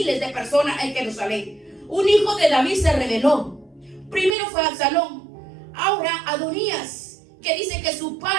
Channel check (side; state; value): left; drops out; at 4.4 s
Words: de personas en Jerusalén. Un hijo de David se rebeló. Primero fue Absalón, ahora Adonías, que dice que su